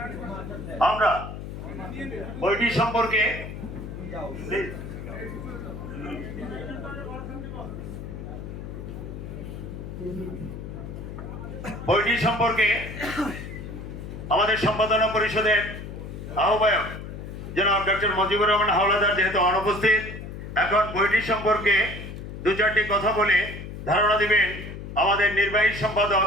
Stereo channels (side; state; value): left; noise; hum, 9 dB below the sound